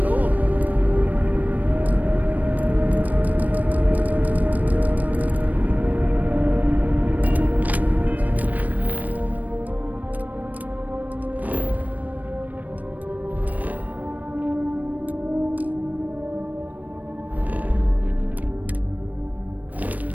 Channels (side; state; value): left; late; 0.077 ms